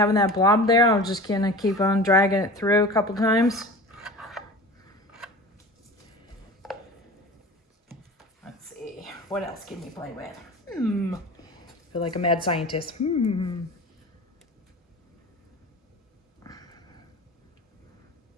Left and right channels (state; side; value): normal; both; correlation 0.36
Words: that blob there. I'm just going to keep on dragging it through a couple times. Let's see, what else can you play with? I feel like a mad scientist. I